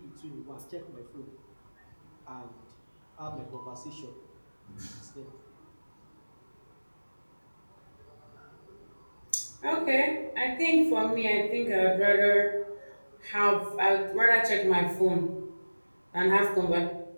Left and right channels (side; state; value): both; inverted; correlation -1.00